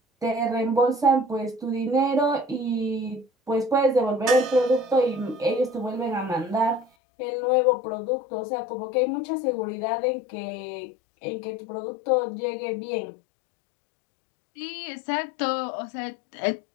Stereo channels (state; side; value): drops out; right; at 6.9 s